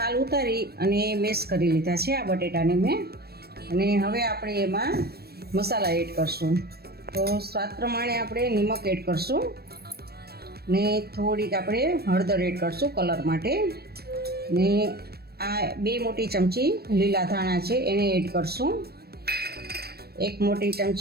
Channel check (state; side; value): late; left; 0.46 ms